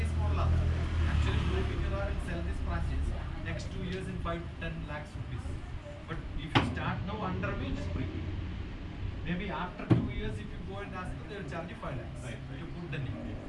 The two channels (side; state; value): both; identical; correlation 1.00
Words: മോഡലാണ് ആക്ച്വലി ബ്ലൂമിംഗ് ഇറ will cell this franchise next 2 years in 5-10 lakhs rupees. But if you start now under me, it's free. Maybe after 2 years, if you go and ask them, they will charge you 5 lakhs to put the name.